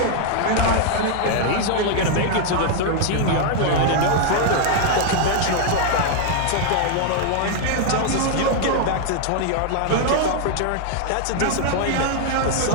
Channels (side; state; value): both; different; correlation 0.00